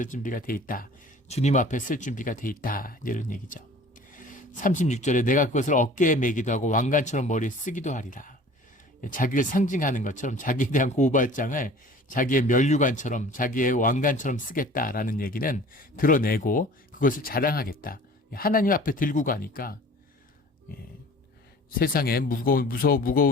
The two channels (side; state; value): both; normal; correlation 0.46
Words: 준비가 돼 있다. 주님 앞에 쓸 준비가 돼 있다. 이런 얘기죠. 36절에 내가 그것을 어깨에 매기도 하고 왕관처럼 머리에 쓰기도 하리라. 자기를 상징하는 것처럼 자기에 대한 고발장을 자기의 면류관처럼 자기의 왕관처럼 쓰겠다라는 얘기는 드러내고 그것을 자랑하겠다. 하나님 앞에 들고 가니까 세상에